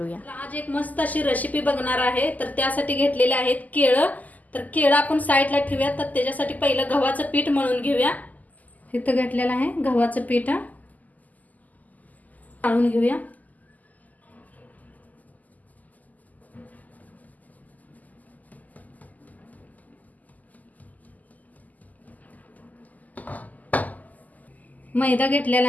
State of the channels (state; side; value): late; right; 0.079 ms